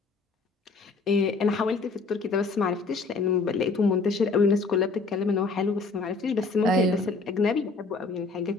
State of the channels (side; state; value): right; quieter; 4.0 dB